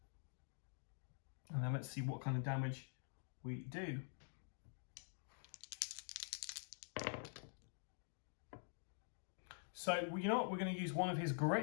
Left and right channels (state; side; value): silent; right; digital silence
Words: And then let's see what kind of damage we do. So you know what? We're going to use one of his